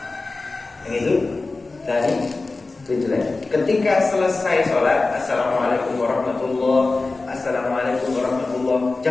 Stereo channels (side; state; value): right; quieter; 3.5 dB